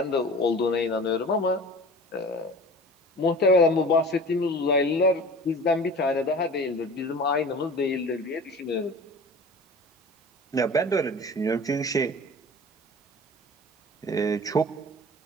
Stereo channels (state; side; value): normal; both; correlation 0.40